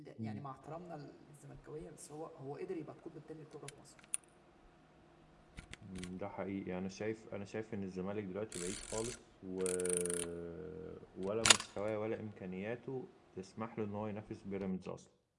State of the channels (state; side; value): identical; both; correlation 1.00